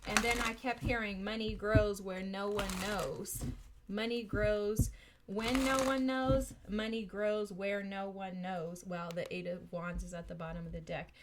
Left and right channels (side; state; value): both; identical; correlation 1.00